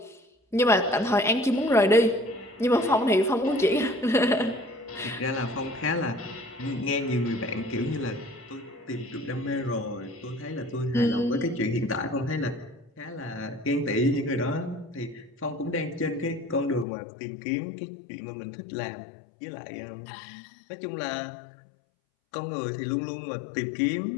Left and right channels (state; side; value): drops out; right; at 16.9 s